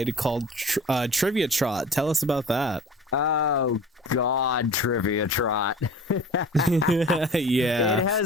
called Trivia Trot. Tell us about that. Oh, God, Trivia Trot. Yeah. It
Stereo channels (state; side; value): normal; both; correlation 0.41